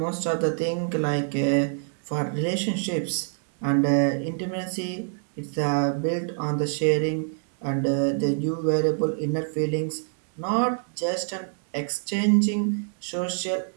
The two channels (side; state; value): left; silent; 61 dB below the other